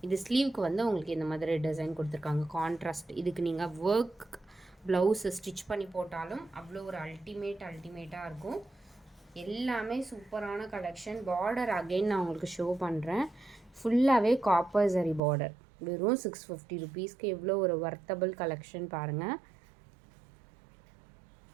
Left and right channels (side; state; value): left; drops out; at 15.2 s